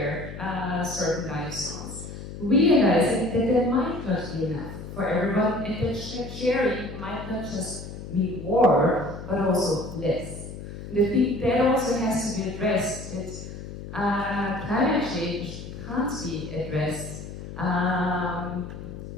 certain lifestyles, realizing that there might not be enough for everyone, and that sharing might not just mean more, but also less. And I think that also has to be addressed, that climate change can't be addressed.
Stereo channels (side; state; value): left; noise; hum, 11 dB below the sound